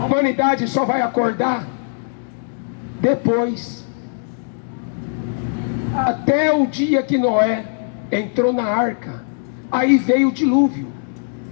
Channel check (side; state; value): right; silent; digital silence